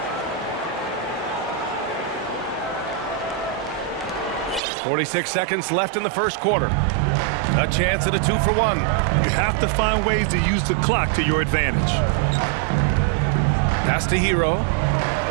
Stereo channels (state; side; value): drops out; left; at 4.6 s